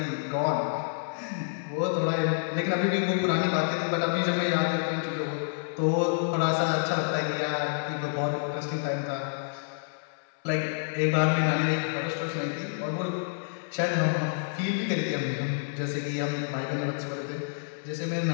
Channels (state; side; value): silent; right; 58 dB below the other